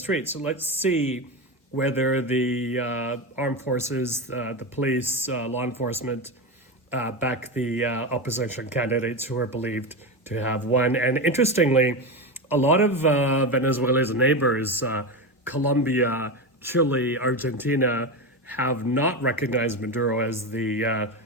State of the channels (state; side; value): normal; both; correlation 0.18